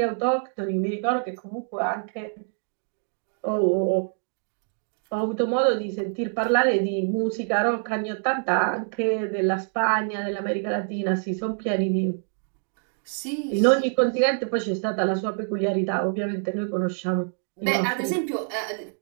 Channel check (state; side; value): silent; left; 61 dB below the other